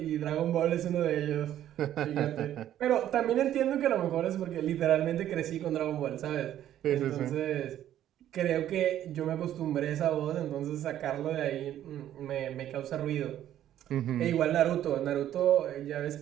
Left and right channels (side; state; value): left; quieter; 11.7 dB